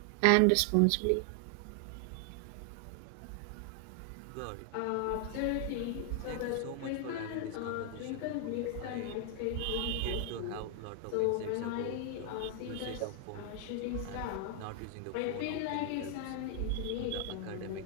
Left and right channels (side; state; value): both; different; correlation 0.00